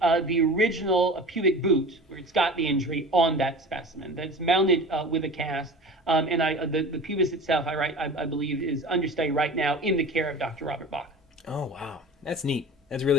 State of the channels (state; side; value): normal; both; correlation 0.36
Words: original pubic boot, where it's got the injury, on that specimen. That's mounted with a cast. And the pubis itself, I believe, is understudy right now in the care of Dr. Robert Bach. Oh, wow. That's neat. That's